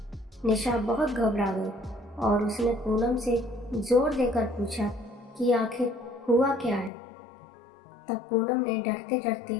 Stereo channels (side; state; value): right; drops out; at 6.9 s